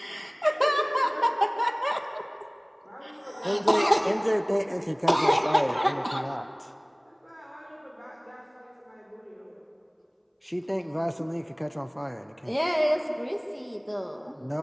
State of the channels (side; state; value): both; identical; correlation 1.00